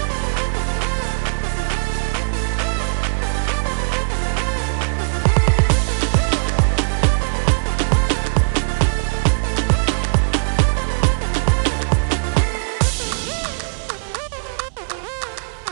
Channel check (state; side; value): silent; left; 66 dB below the other